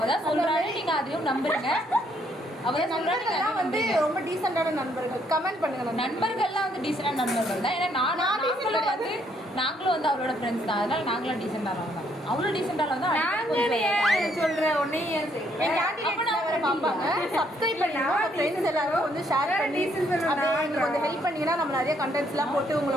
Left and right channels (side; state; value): both; normal; correlation 0.70